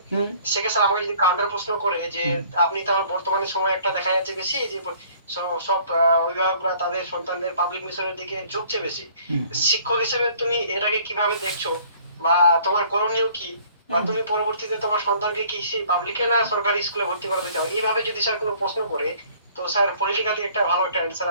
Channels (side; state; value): both; inverted; correlation -0.55